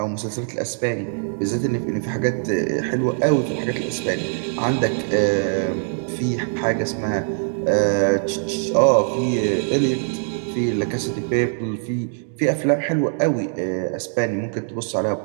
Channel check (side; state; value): left; silent; digital silence